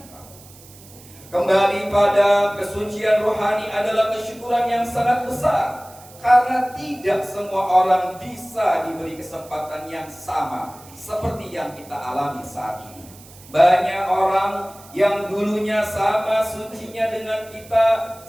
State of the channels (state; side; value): noise; right; hiss, 22 dB below the sound